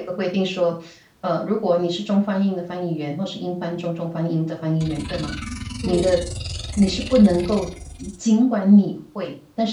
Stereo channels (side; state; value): both; identical; correlation 1.00